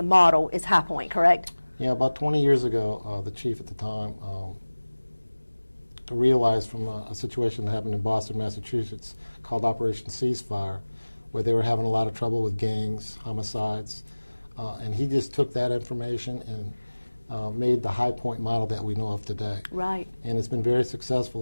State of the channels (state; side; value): inverted; both; correlation -1.00